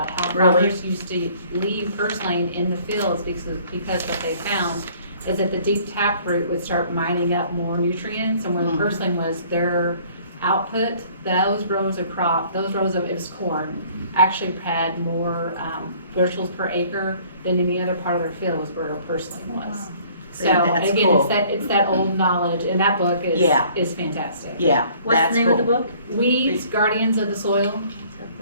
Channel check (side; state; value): both; inverted; correlation -0.56